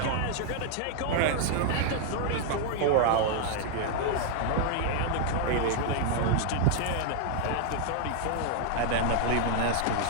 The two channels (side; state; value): both; different; correlation 0.00